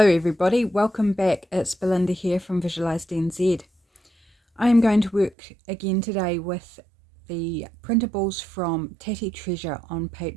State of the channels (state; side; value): drops out; left; at 5.4 s